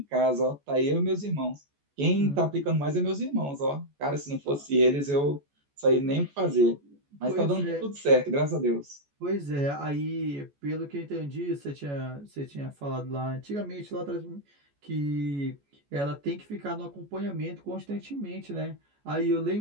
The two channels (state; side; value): late; left; 14 ms